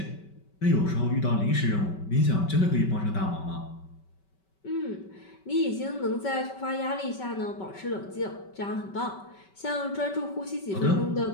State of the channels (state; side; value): late; right; 5.2 ms